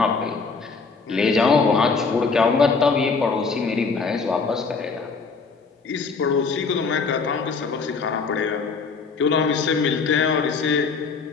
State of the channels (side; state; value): right; quieter; 4.8 dB